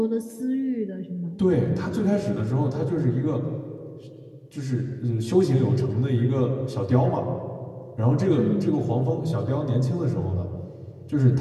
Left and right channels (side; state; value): both; identical; correlation 1.00